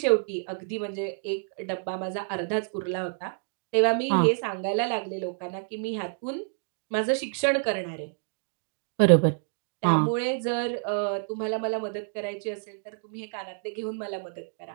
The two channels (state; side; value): silent; left; 59 dB below the other